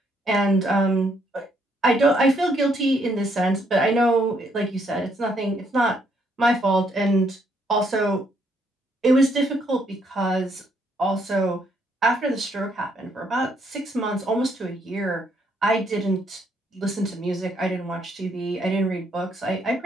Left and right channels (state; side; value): normal; both; correlation 0.71